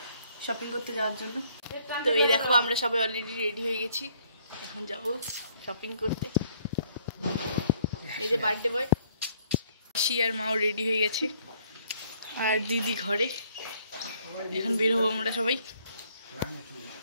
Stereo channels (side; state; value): both; inverted; correlation -0.64